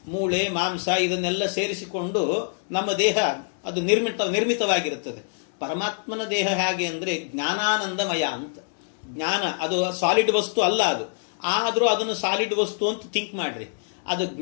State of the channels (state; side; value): silent; right; digital silence